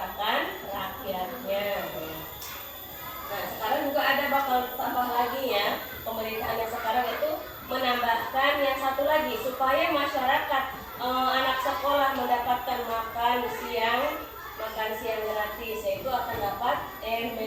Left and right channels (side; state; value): both; identical; correlation 1.00